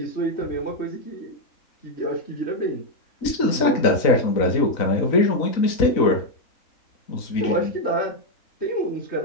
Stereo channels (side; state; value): right; late; 3.9 ms